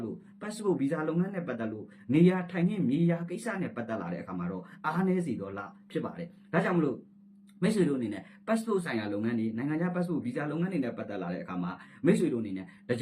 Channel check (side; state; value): both; identical; correlation 1.00